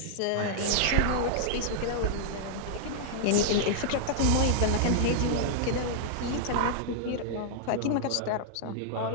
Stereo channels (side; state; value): both; different; correlation -0.01